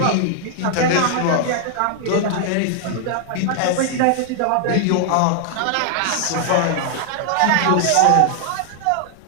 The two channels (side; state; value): both; different; correlation 0.00